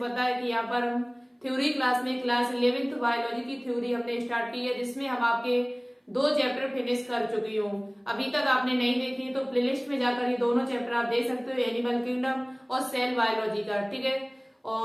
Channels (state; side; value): identical; both; correlation 1.00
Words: है कि यहाँ पर हम थ्योरी क्लास में क्लास 11th बायोलॉजी की थ्योरी हमने स्टार्ट की है, जिसमें हम आपके 2 चैप्टर फिनिश कर चुकी हूँ। अभी तक आपने नहीं देखी तो प्लेलिस्ट में जाकर ये दोनों चैप्टर आप देख सकते हो, एनिमल किंगडम और सेल बायोलॉजी का। ठीक है,